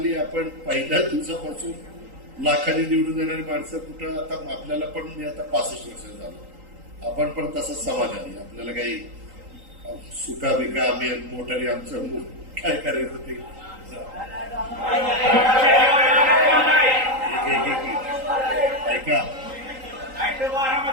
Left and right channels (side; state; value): left; late; 3.8 ms